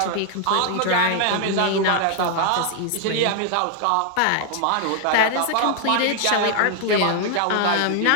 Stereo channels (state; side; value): different; both; correlation 0.00